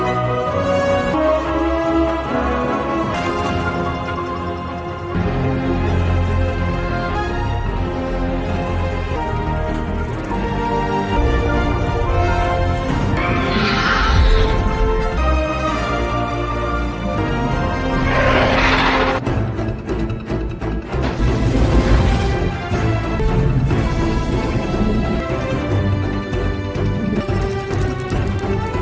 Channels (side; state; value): both; identical; correlation 1.00